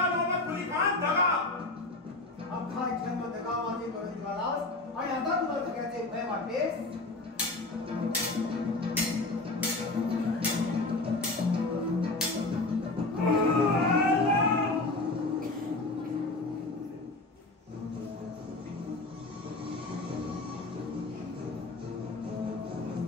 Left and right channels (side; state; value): right; quieter; 3.0 dB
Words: आणि आता तुला सगळ्याचे भय वाटतेस.